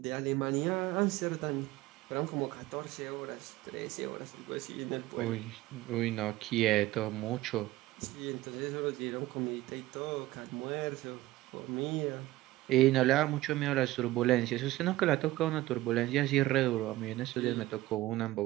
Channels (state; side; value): quieter; left; 17.3 dB